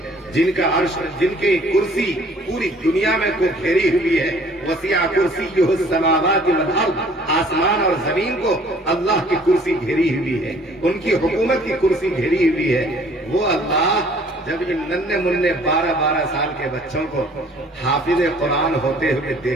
جن کا عرش، جن کی کرسی پوری دنیا میں کو گھیری ہوئی ہے. وسیع کرسیہ السماوات والارض، آسمان اور زمین کو اللہ کی کرسی گھیری ہوئی ہے، ان کی حکومت کی کرسی گھیری ہوئی ہے. وہ اللہ جب ان ننھے منھے 12 سال کے بچوں کو حافظ قرآن ہوتے ہوئے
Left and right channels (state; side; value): normal; both; correlation 0.56